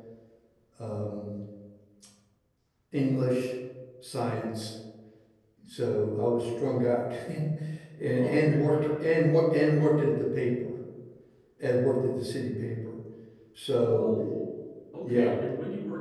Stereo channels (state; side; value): identical; both; correlation 1.00